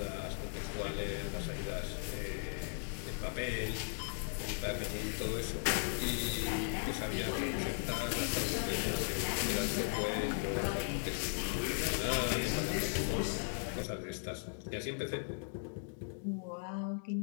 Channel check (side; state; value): right; silent; digital silence